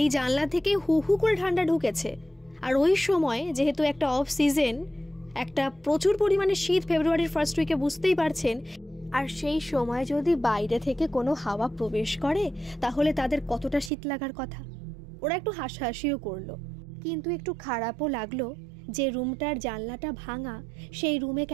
এই জানলা থেকে হু হু করে ঠান্ডা ঢুকেছে। আর ওই সময় যেহেতু একটা অফ সিজন, একটা প্রচুর পরিমাণে শীত, ফেব্রুয়ারির ফার্স্ট উইকে, বুঝতেই পারছেন। আর সেই সময় যদি বাইরে থেকে কোনো হাওয়া প্রবেশ করে তাহলে তাদের কতটা শীত লাগার কথা। ওরা একটু হাসাহাসিও করলো, কিন্তু একটু খারাপও লাগলো যে রুমটার জানলাটা ভাঙা, সেই রুমে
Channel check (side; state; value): left; drops out; at 13.9 s